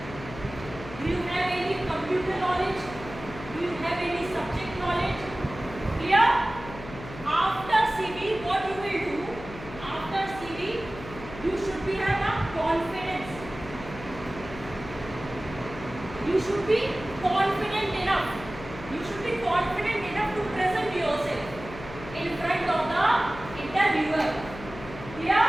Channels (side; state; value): left; noise; hum, 13 dB below the sound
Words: You should be confident.